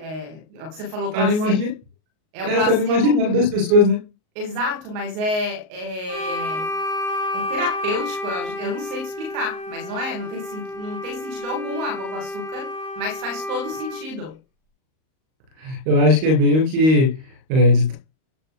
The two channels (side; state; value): left; late; 38 ms